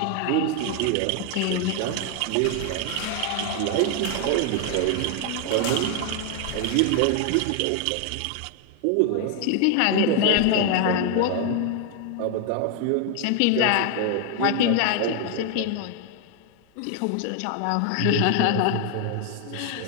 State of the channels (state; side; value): different; both; correlation 0.01